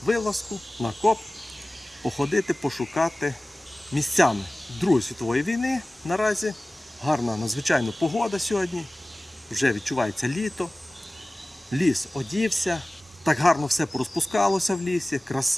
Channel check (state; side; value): normal; both; correlation 0.98